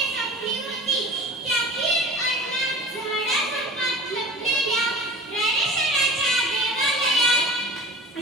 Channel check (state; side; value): normal; both; correlation 0.38